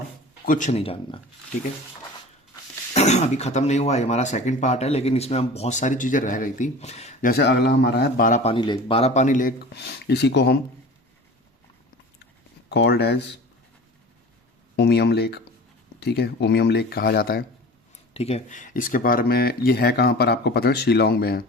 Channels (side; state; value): both; normal; correlation 0.38